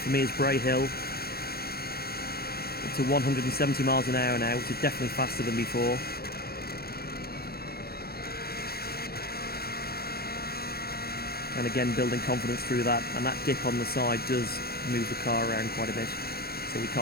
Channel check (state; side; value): late; right; 0.45 ms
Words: for me is Bray Hill, up to 170 miles an hour now, which is definitely faster than before. And again, building confidence through that, and that dip on the side does move the car around quite a bit, so we